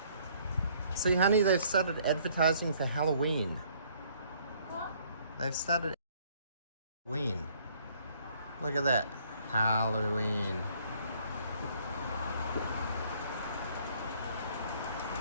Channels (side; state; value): both; inverted; correlation -0.62